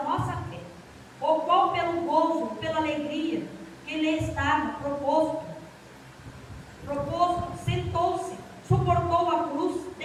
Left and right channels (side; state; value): both; identical; correlation 1.00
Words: nossa fé, o qual pelo gozo, pela alegria que lhe estava proposto, sentou-se, suportou a cruz,